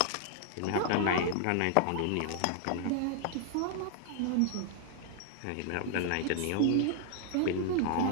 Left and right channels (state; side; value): different; both; correlation 0.00